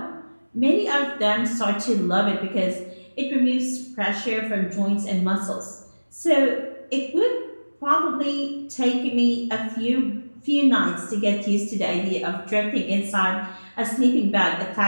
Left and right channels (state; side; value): inverted; both; correlation -1.00